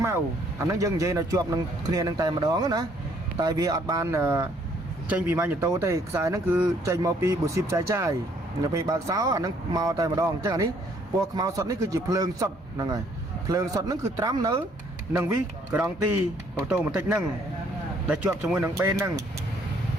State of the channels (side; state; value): both; normal; correlation 0.64